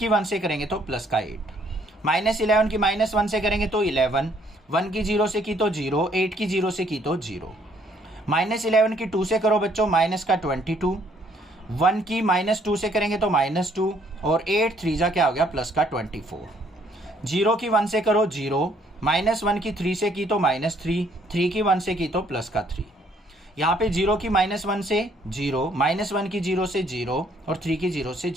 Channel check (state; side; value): normal; both; correlation 0.65